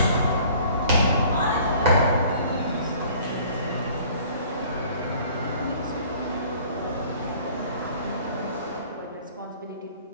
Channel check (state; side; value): inverted; both; correlation -0.52